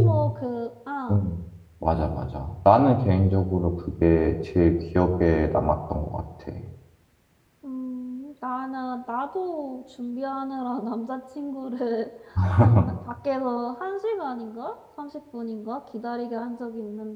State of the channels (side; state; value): both; identical; correlation 1.00